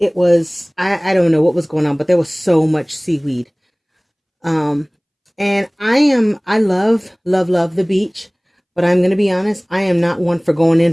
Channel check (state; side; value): identical; both; correlation 1.00